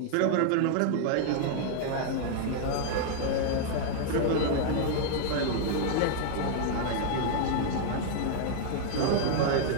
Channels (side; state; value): both; different; correlation 0.00